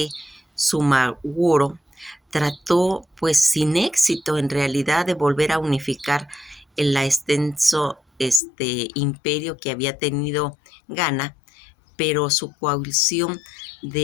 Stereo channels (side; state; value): right; drops out; at 8.4 s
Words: Sumaworo trató, pues sin éxito en realidad, de volver a unificar el extenso imperio que había tenido Ghana, pero su coalición